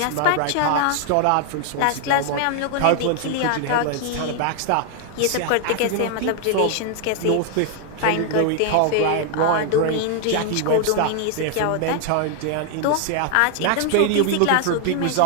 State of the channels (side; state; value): both; different; correlation 0.00